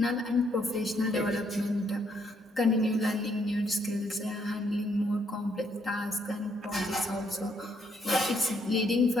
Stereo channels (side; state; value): both; normal; correlation 0.72